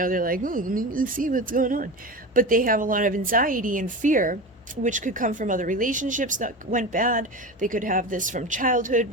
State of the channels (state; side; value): normal; both; correlation 0.26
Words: like, let me see what's going on. But they have a lot of anxiety and fear which could come from other relationships that went bad. They could have this from childhood